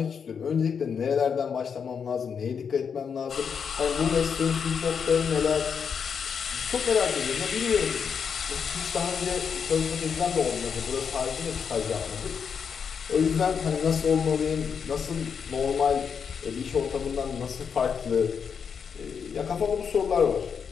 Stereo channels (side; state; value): right; quieter; 6.7 dB